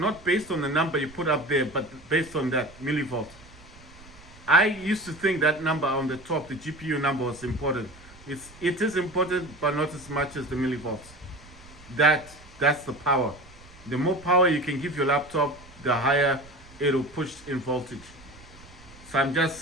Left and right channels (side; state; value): right; noise; rumble, 22 dB below the sound